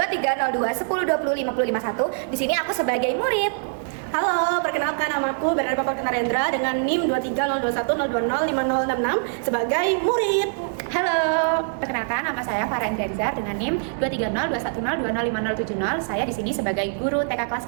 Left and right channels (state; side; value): silent; left; 61 dB below the other